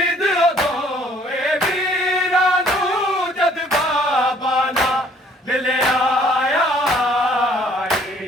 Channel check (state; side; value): normal; both; correlation 0.59